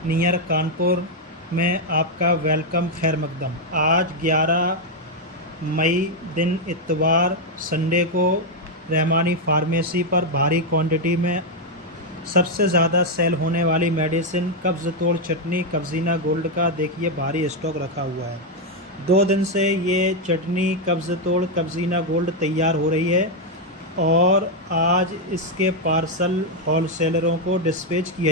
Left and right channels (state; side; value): normal; both; correlation 0.01